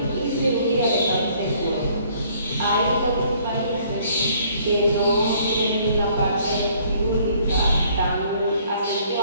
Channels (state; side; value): inverted; both; correlation -0.61